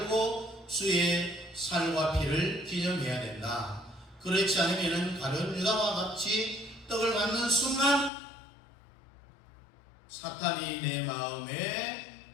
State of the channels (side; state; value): right; drops out; at 8.1 s